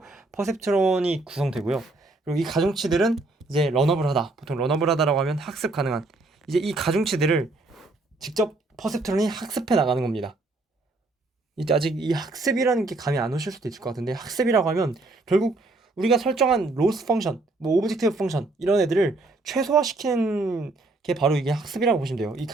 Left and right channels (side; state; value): left; quieter; 3.1 dB